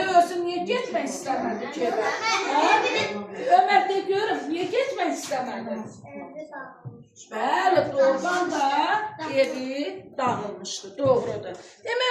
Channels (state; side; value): identical; both; correlation 1.00